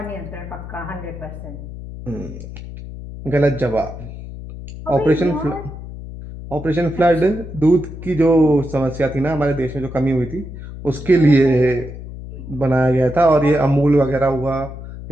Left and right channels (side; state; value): left; noise; hum, 12 dB below the sound